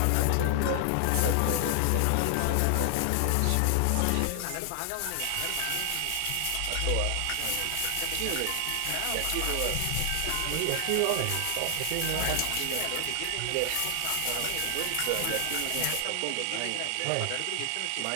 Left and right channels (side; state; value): both; different; correlation 0.00